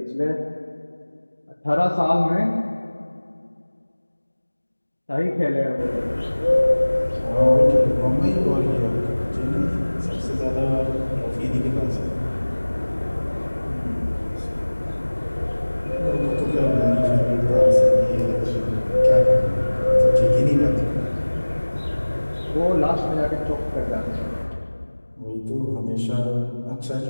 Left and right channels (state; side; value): inverted; both; correlation -1.00